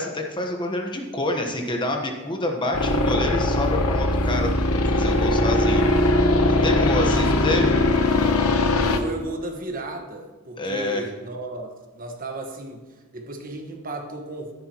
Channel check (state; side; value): normal; both; correlation 0.42